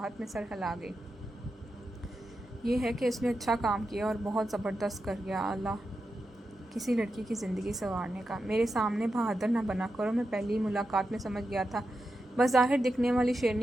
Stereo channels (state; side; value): normal; both; correlation 0.89